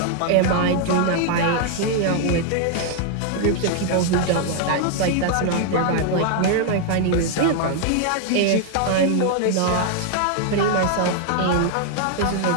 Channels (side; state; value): both; different; correlation 0.00